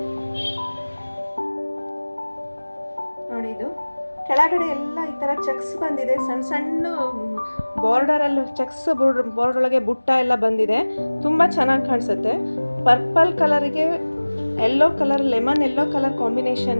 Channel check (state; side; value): inverted; both; correlation -1.00